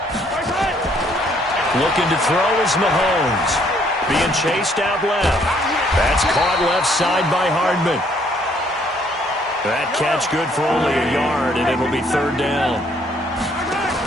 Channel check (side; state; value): both; normal; correlation 0.66